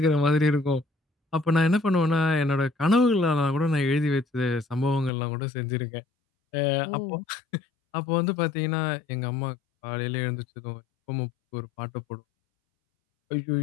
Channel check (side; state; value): right; drops out; at 5.1 s